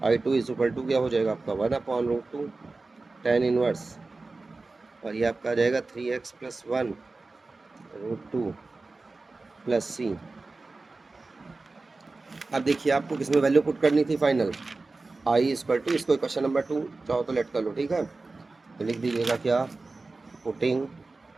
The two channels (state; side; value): quieter; left; 3.5 dB